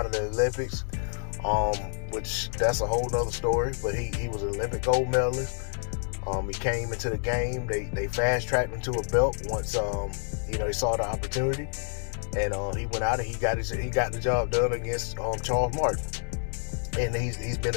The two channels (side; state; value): right; silent; 59 dB below the other